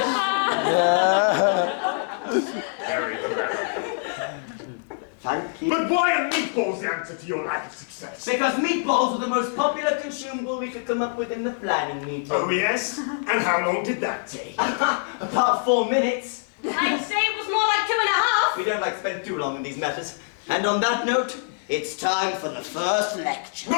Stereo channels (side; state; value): right; silent; digital silence